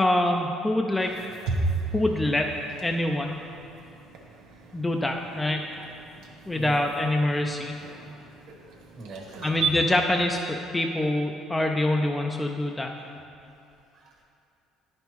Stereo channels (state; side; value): normal; both; correlation 0.84